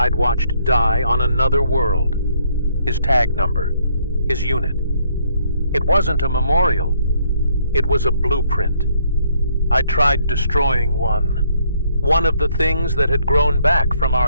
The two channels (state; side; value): inverted; both; correlation -0.69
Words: watched die on another world, his tag number, his unit. It wasn't a memorial, it was a blueprint. I tried destroying one of the things that had grown back from